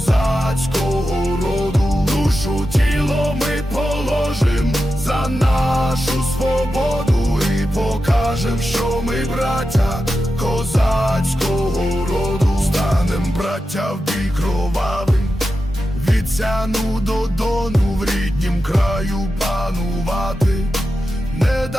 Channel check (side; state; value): both; normal; correlation 0.91